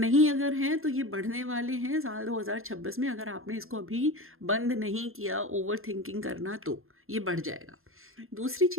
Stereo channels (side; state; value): left; late; 0.61 ms